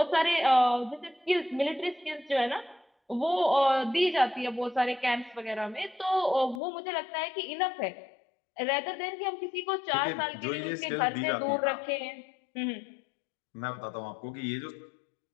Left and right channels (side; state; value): right; drops out; at 6.6 s